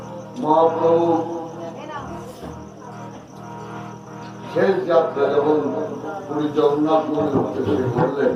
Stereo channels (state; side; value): identical; both; correlation 1.00